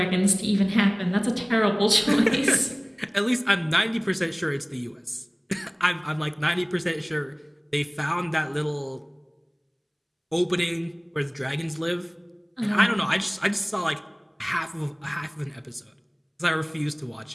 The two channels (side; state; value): both; identical; correlation 1.00